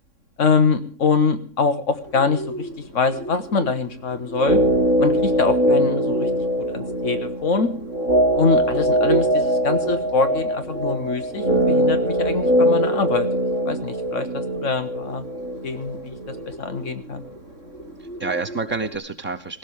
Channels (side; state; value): right; late; 3.6 ms